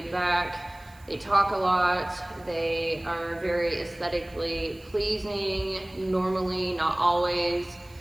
back. They talk a lot. They are very aesthetically pleasing, normally, not always.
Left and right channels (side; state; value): right; noise; hiss, 27 dB below the sound